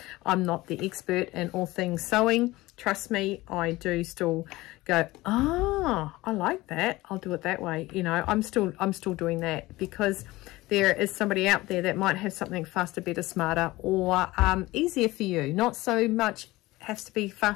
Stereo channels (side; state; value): right; quieter; 19.3 dB